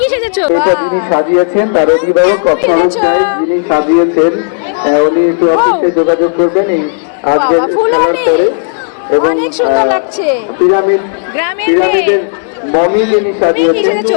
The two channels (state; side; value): silent; right; digital silence